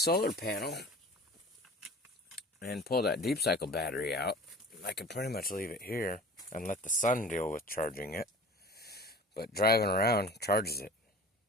panel and pull that deep cycle battery out, I could pretty much leave it here and let the sun deal with charging it. But driving around charges it.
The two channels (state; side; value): normal; both; correlation 0.41